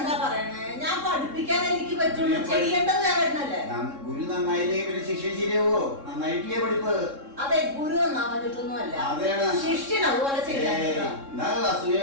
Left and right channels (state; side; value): late; left; 3.7 ms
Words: പറയണേ? ഞാൻ പഠിപ്പിക്കാൻ എനിക്ക് പറ്റുള്ളൂ. ചെയ്യേണ്ടത് ദേവേട്ടനല്ലേ? ഗുരു നന്നായില്ലേ ഇവര് ശിഷ്യ ശരിയാവോ? നന്നായിട്ടില്ലേ പഠിപ്പ്? അതെ, ഗുരു നന്നാവാഞ്ഞിട്ടൊന്നുമല്ല, ശിഷ്യൻ അതുപോലെ ചെയ്യാൻ.